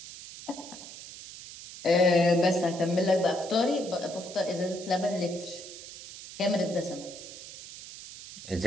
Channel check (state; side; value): noise; right; hiss, 14 dB below the sound